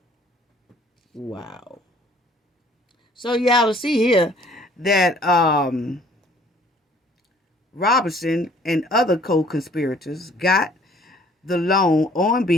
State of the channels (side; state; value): both; normal; correlation 0.56